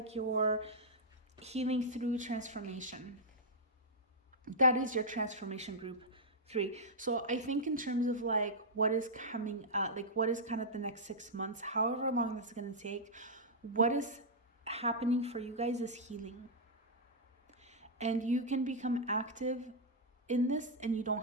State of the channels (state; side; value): normal; both; correlation -0.08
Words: you're healing through transformation. That is your transformation group 3. So I think in terms of like what is coming up, like what is kind of the next 6 months, however long that's going to take, what is happening for you guys is healing. And you can become active in this and you